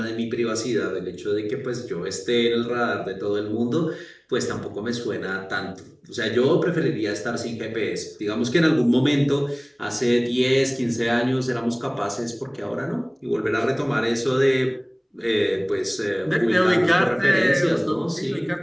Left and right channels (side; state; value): both; identical; correlation 1.00